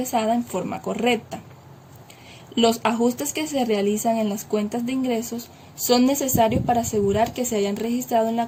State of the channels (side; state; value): both; identical; correlation 1.00